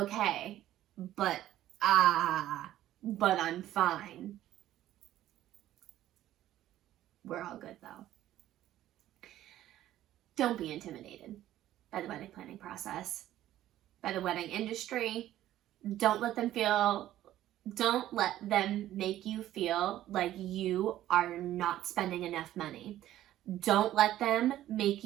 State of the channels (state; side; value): quieter; left; 13.3 dB